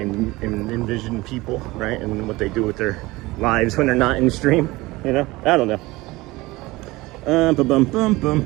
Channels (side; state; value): left; quieter; 20.6 dB